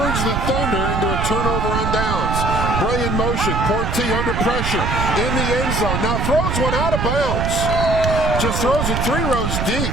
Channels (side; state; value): right; noise; rumble, 1 dB below the sound